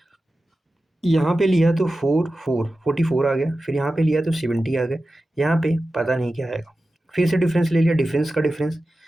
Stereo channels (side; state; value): both; normal; correlation 0.94